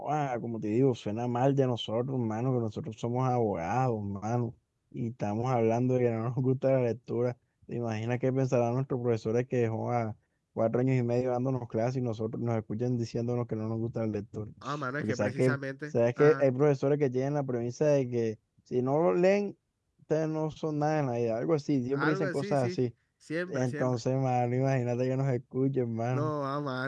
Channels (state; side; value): identical; both; correlation 1.00